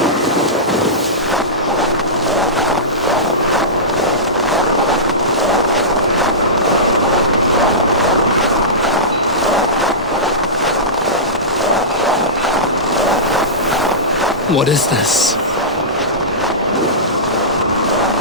What is this?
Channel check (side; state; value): both; normal; correlation -0.17